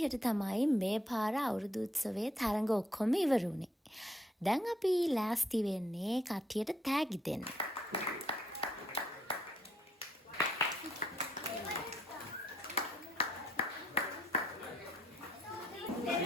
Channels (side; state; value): both; normal; correlation 0.71